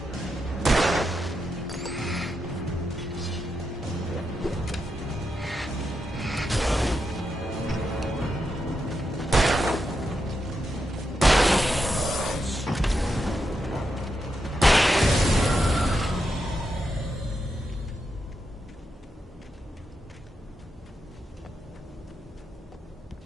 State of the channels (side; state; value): both; normal; correlation 0.85